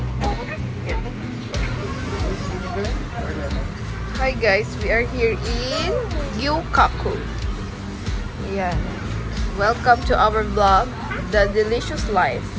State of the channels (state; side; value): identical; both; correlation 1.00